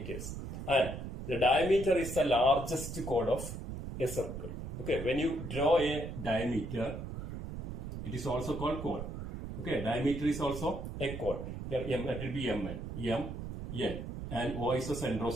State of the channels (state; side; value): noise; right; rumble, 7 dB below the sound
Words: and the diameter is the largest chord of a circle. Okay, when you draw a diameter, it is also called chord. Okay, diameter is also a chord. Here M, it will be Mn, M, N, and O is the center of